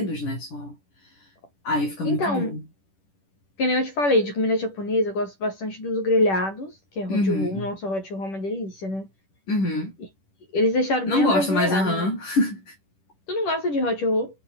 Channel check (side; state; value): right; late; 10 ms